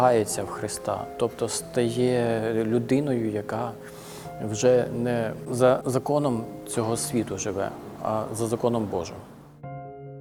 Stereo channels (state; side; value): identical; both; correlation 1.00